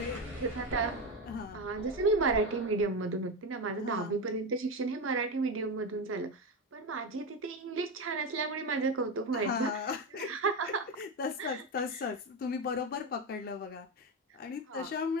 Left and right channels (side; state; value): both; normal; correlation 0.15